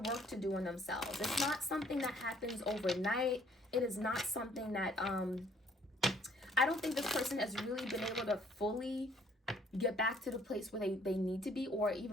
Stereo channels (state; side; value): normal; both; correlation 0.62